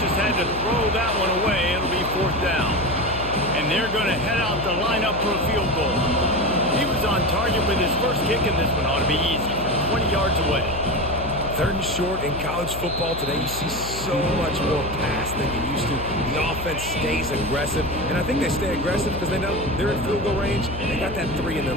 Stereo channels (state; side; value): noise; left; hum, 10 dB below the sound